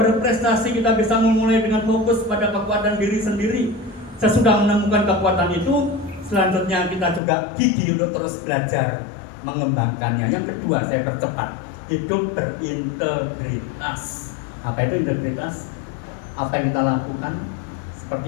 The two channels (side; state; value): right; drops out; at 7.2 s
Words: berprestasi kita bisa memulai dengan fokus pada kekuatan diri sendiri. Sesudah menemukan kekuatan itu, selanjutnya kita juga gigih untuk terus belajar mengembangkannya. Yang kedua, saya percepat, hidup berintegritas. Apa itu integritas? Apa yang kita lakukan, seperti